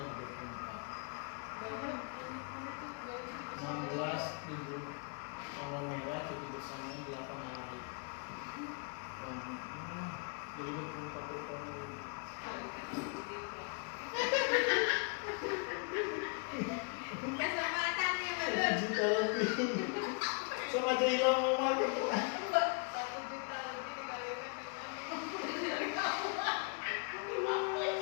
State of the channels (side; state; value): right; quieter; 36.6 dB